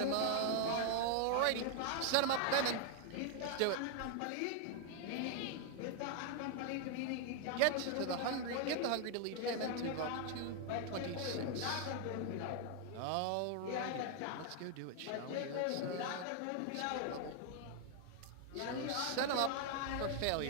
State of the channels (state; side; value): different; both; correlation 0.00